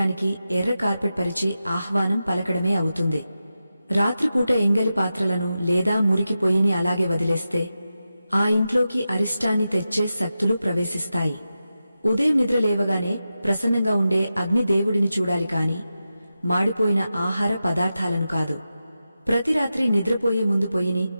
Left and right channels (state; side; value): inverted; both; correlation -0.91